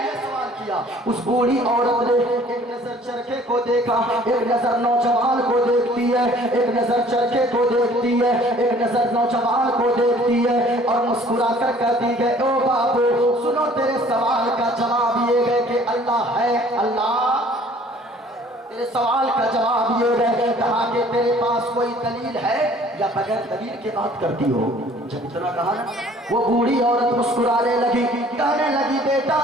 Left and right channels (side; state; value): both; normal; correlation 0.54